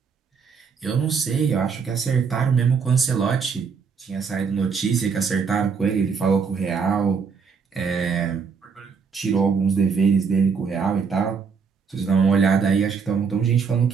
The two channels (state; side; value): quieter; left; 5.8 dB